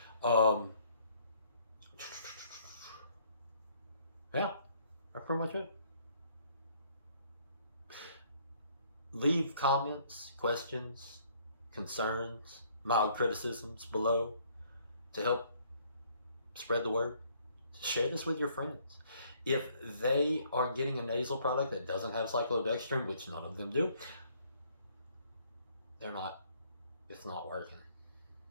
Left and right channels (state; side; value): inverted; both; correlation -0.64